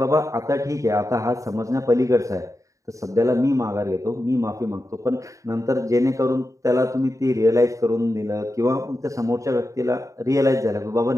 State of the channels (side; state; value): left; late; 0.16 ms